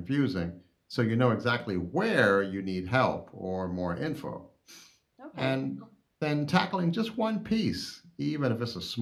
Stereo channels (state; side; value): identical; both; correlation 1.00